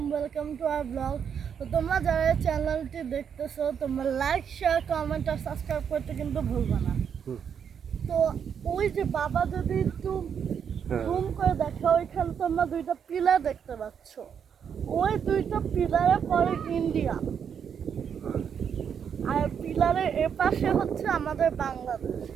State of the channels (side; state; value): left; quieter; 7.6 dB